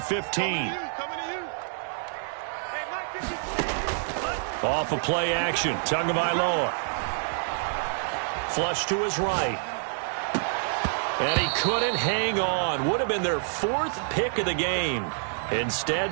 15. Off a play action, Tagovailoa. Flush to his right. And he couldn't hang on. Would have been their 4th pick of the game. Instead,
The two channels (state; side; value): silent; left; 60 dB below the other